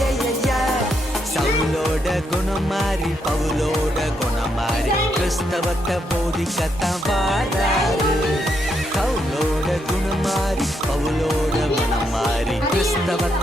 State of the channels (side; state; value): both; normal; correlation 0.78